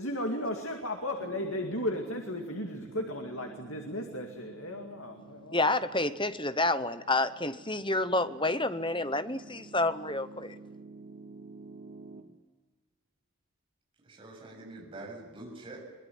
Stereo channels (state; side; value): normal; both; correlation 0.14